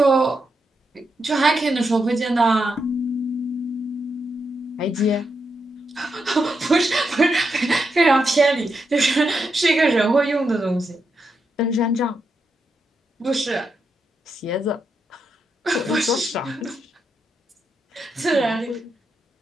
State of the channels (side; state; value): both; normal; correlation 0.83